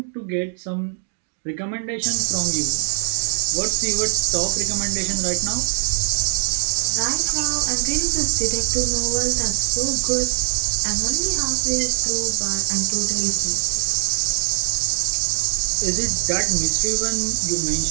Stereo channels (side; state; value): left; silent; digital silence